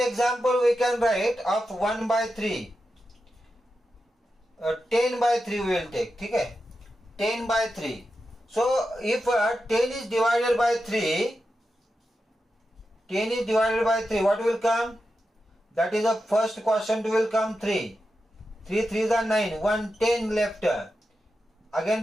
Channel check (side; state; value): both; normal; correlation 0.90